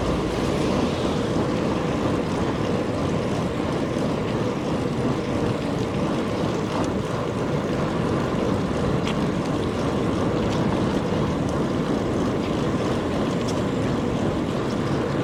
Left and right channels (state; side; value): identical; both; correlation 1.00